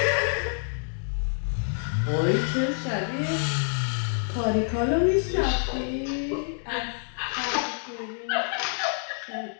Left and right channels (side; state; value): right; silent; digital silence